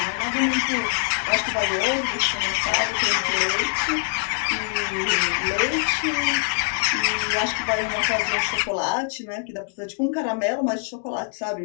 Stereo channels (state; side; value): silent; right; 62 dB below the other